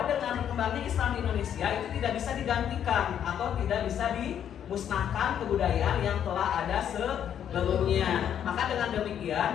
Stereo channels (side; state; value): right; quieter; 9.4 dB